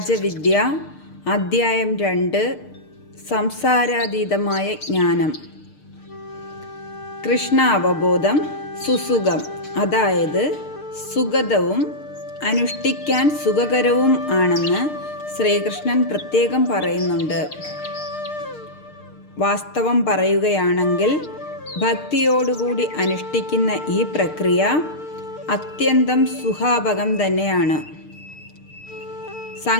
അധ്യായം 2 സംസാരാതീതമായ ജ്ഞാനം. കൃഷ്ണ അവബോധം സുസുഖം, അതായത് സുഗതവും അനുഷ്ഠിക്കാൻ സുഖകരവും ആണെന്ന് ശ്രീകൃഷ്ണൻ പ്രത്യേകം പറയുന്നുണ്ട്. വാസ്തവം പറയുകയാണെങ്കിൽ ഭക്തിയോടുകൂടി അനുഷ്ഠിക്കുന്ന ഈ പ്രക്രിയ അത്യന്തം സുഖാപകം തന്നെയാണ്.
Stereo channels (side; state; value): right; late; 6.6 ms